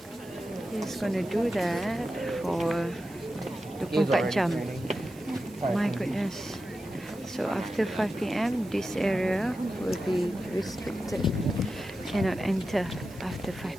He's gonna do that for 24 jam. My goodness. So after 5 p.m. this area will be restricted. Cannot enter after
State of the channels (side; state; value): right; noise; hiss, 23 dB below the sound